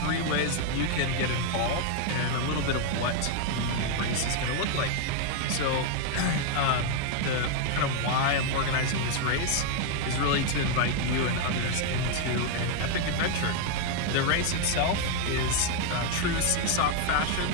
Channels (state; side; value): different; both; correlation 0.00